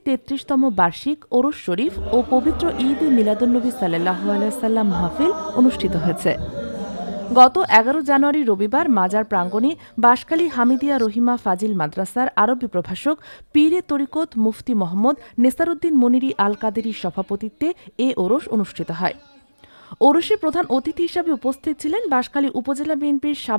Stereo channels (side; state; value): both; inverted; correlation -1.00